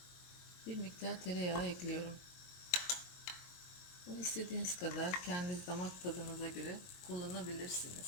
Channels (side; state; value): right; late; 22 ms